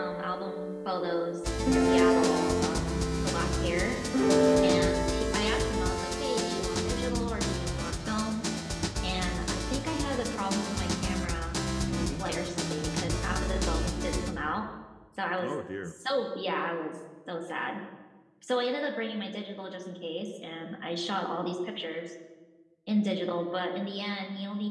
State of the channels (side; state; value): both; identical; correlation 1.00